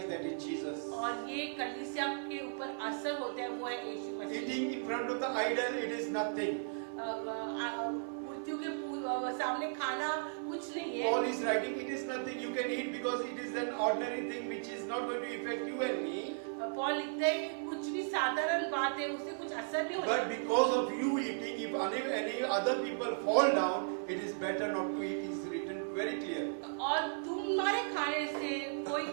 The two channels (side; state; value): left; silent; digital silence